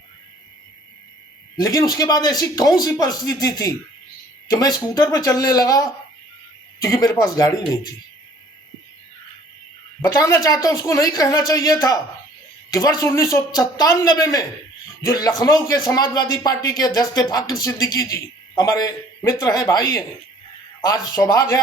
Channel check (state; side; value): normal; both; correlation 0.54